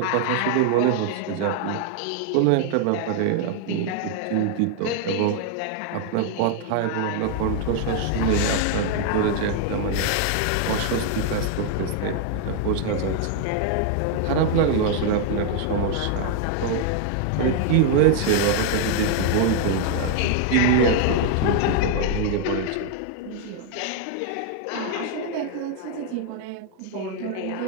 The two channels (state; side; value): different; both; correlation 0.00